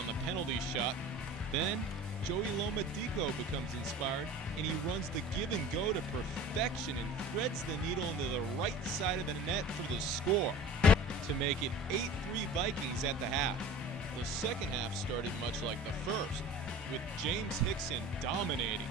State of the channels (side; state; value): both; normal; correlation 0.40